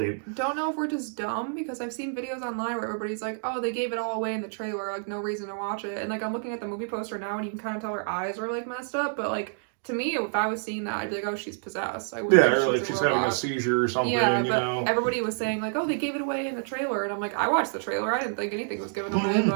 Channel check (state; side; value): silent; left; digital silence